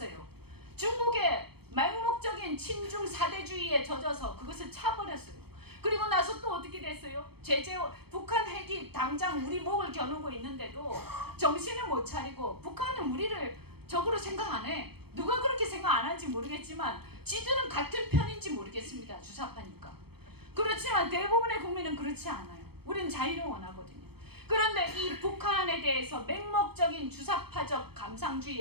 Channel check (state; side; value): late; left; 0.96 ms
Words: 중국의 맹목적인 친중 사대주의에 젖어서 그것을 차버렸어요. 그리고 나서 또 어떻게 됐어요? 북한 핵이 당장 우리 목을 겨누고 있는데도 정신을 못 차리고 북한은 우리를 적으로 생각 안 해. 누가 그렇게 생각 안 하는지 모르겠지만 지들은 같은 편인지 모르겠습니다. 주사파니까. 그렇지만 대부분의 국민은 그렇지 않아요. 우리는 자유를 원하거든요. 그런데 이 북한에 대해서 맹목적인 주사파적